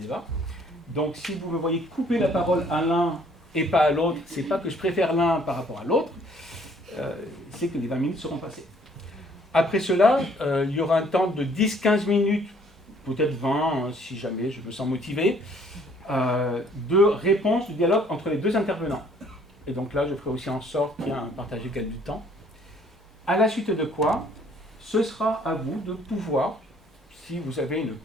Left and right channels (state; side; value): normal; both; correlation 0.60